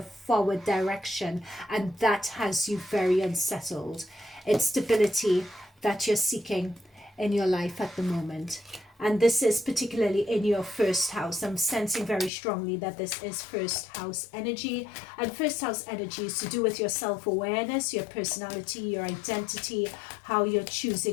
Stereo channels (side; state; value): right; drops out; at 12.3 s